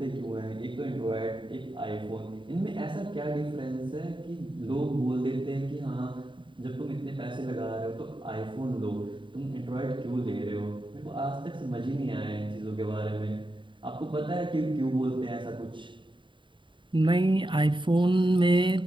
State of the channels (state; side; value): late; left; 0.23 ms